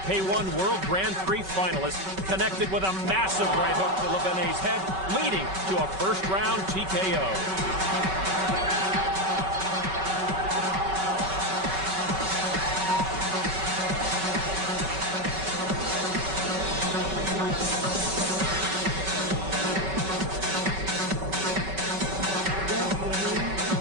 World Grand Prix finalist, connected with a massive right hook to Lebanet's head, leading to a first-round TKO.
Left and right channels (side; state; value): left; late; 5.3 ms